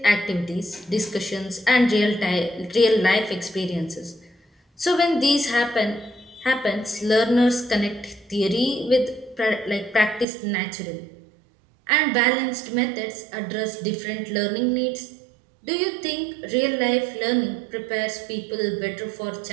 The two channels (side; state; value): left; drops out; at 10.2 s